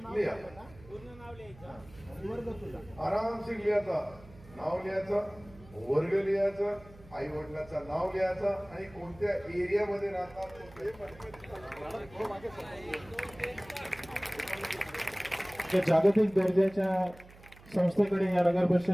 लिहा, आरामशीर लिहायचा. नाव लिहायचं, वर्ग लिहायचं, आई वडिलांचं नाव लिहायचं आणि कोणत्या एरियामध्ये राहतात. जागतिक दर्जाच्या संस्थेकडे या नगर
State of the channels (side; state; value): right; noise; hum, 22 dB below the sound